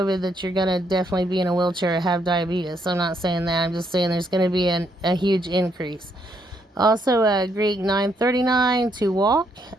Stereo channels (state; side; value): normal; both; correlation 0.74